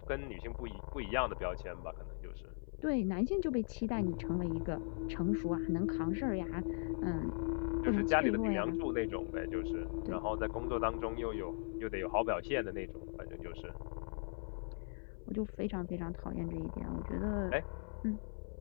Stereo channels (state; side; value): silent; right; 52 dB below the other